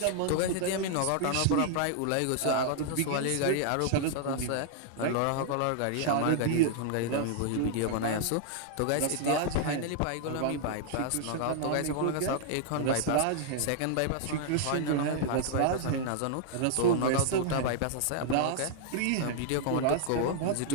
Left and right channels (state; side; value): different; both; correlation -0.01